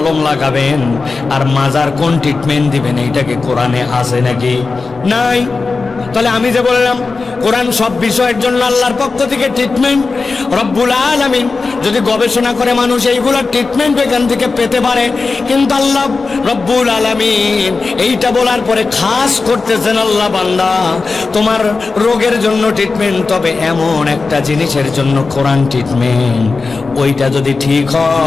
লাগাবেন আর মাজার কোন ট্রিটমেন্ট দিবেন, এইটাকে কোরআনে আছে নাকি? নাই। তাহলে আমি যে বললাম কোরআন সব বিষয়ের জন্য আল্লাহর পক্ষ থেকে ট্রিটমেন্ট। রব্বুল আলামিন যদি গবেষণা করে মানুষ এইগুলোর ট্রিটমেন্ট এখান থেকে পেতে পারে, কিন্তু আল্লাহ রব্বুল আলামিন এইটা বলার পরে খাস করতেছেন, আল্লাহ বান্দা তোমার রোগের জন্য ট্রিটমেন্ট, তবে এমন একটা জিনিসের জন্য কোরআন ট্রিটমেন্ট, ওইটা যদি ঠিক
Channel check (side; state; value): right; quieter; 4.1 dB